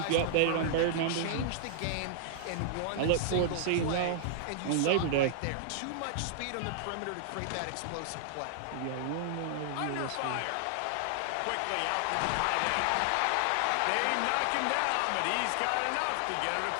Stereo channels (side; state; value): both; different; correlation -0.01